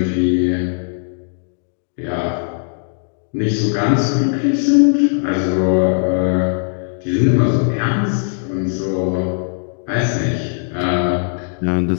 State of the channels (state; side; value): silent; right; digital silence